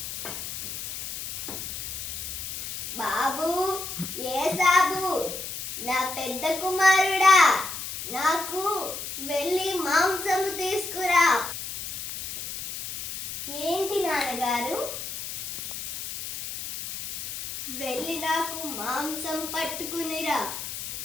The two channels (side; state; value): left; noise; hiss, 7 dB below the sound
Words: బాబు ఏ సాబు, నా పెద్ద కుమారుడా, నాకు వెళ్ళి మాంసము తీసుకురా. ఏంటి నాన్నగారు? వెళ్ళి నాకు మాంసం పట్టుకునిరా.